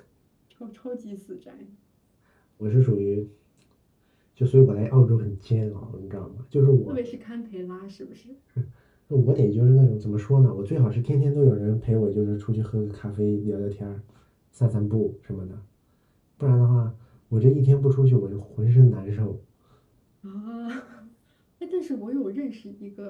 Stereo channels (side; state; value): both; identical; correlation 1.00